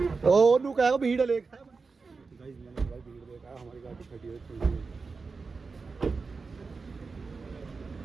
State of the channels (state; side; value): quieter; left; 4.5 dB